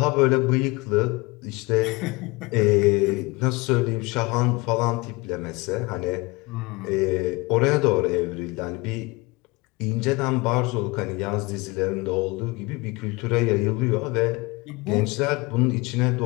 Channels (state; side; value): quieter; right; 24.7 dB